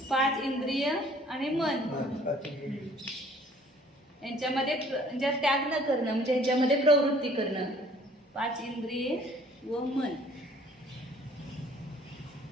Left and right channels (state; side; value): normal; both; correlation 0.56